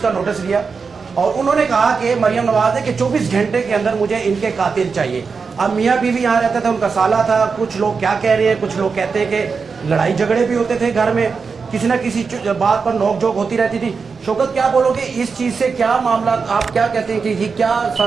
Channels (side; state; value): left; quieter; 5.1 dB